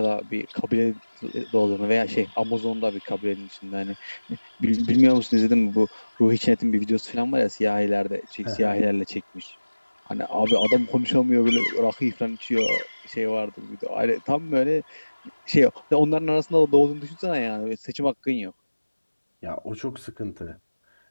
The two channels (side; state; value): both; inverted; correlation -1.00